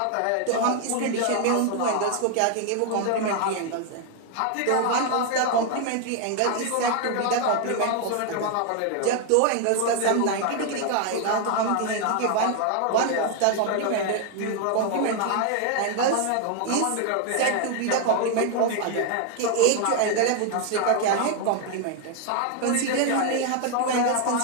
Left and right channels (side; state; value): both; different; correlation 0.00